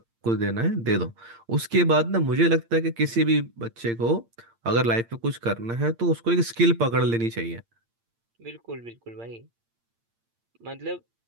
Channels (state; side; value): late; left; 8.7 ms